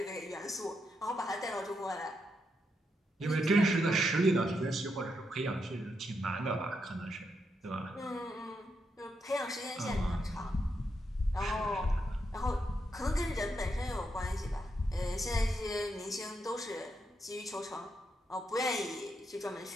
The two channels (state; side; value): normal; both; correlation 0.82